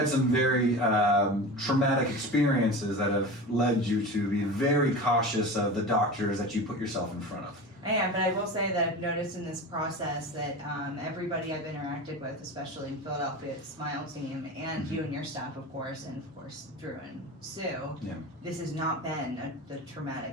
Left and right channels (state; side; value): normal; both; correlation 0.30